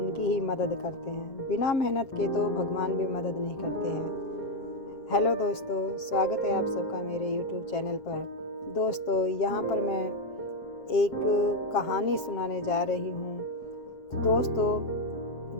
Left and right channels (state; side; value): late; right; 7.5 ms